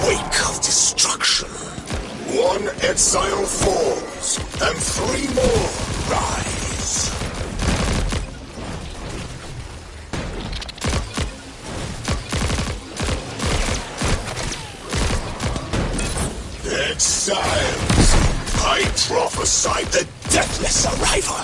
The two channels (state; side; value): identical; both; correlation 1.00